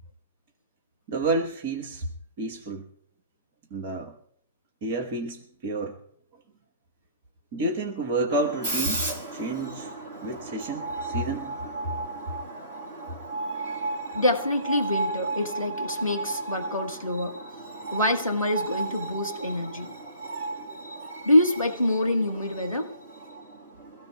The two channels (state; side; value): inverted; both; correlation -0.55